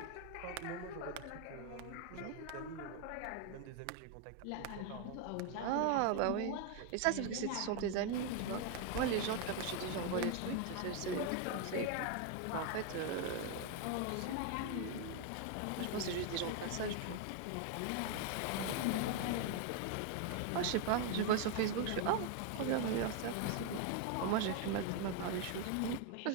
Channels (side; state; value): both; different; correlation 0.01